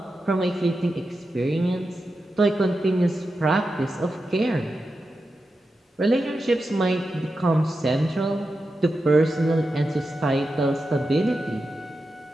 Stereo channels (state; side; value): normal; both; correlation 0.90